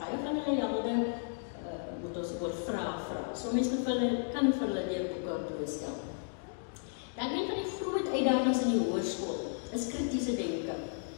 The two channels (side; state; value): right; silent; digital silence